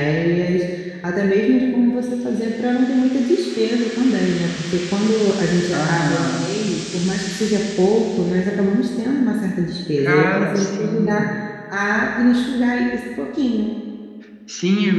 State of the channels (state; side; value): identical; both; correlation 1.00